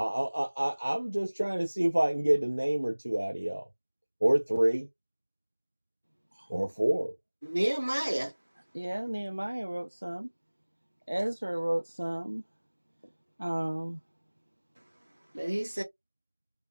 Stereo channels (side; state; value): both; inverted; correlation -1.00